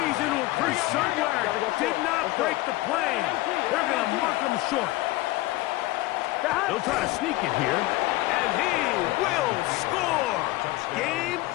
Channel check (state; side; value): quieter; right; 18.7 dB